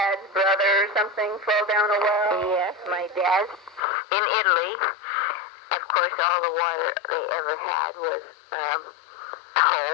brother or something fall down a well? Yes, my dad in Italy. Of course, all the water they ever had was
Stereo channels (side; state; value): right; drops out; at 3.8 s